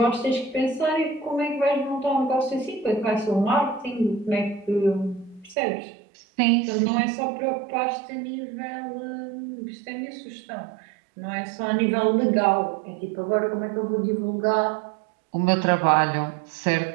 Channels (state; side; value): drops out; left; at 5.6 s